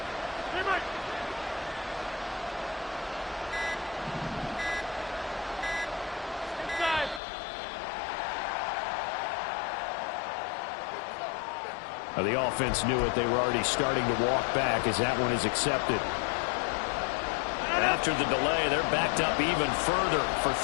The offense knew it. They were already starting to walk back as that one is accepted. After the delay, they're backed up even further for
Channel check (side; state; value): right; drops out; at 7.2 s